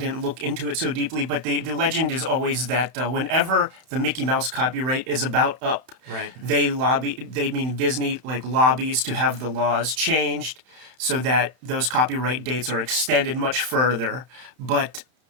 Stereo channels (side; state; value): left; late; 31 ms